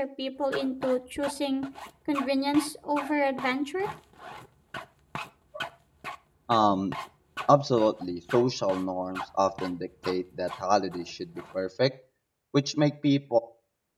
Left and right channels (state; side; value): identical; both; correlation 1.00